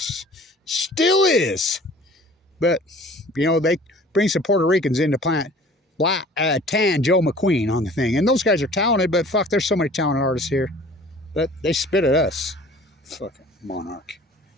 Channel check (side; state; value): both; normal; correlation 0.48